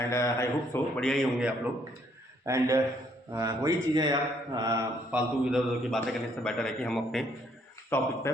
आई होप सो बढ़िया ही होंगे आप लोग। एंड वही चीज़ें यार, फालतू इधर उधर की बातें करने से बेटर है कि हम अपने टॉपिक पे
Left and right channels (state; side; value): normal; both; correlation 0.68